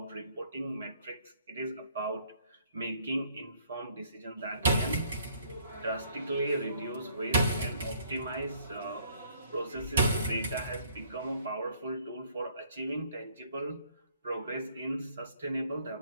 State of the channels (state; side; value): inverted; both; correlation -0.62